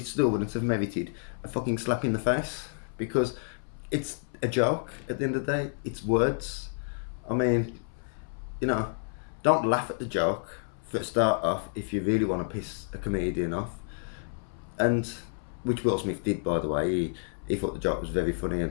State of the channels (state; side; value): silent; right; 58 dB below the other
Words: still wouldn't have merited a fucking slap in the face because it's a joke at the end of the day. It's words. I mean, you know, don't laugh at the joke for a start off if you really want to piss a comedian off. And which Will Smith did, by the way. He thought the joke was very funny